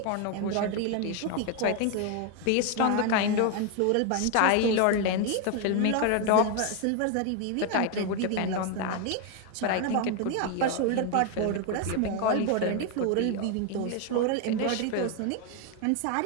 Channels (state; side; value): different; both; correlation 0.01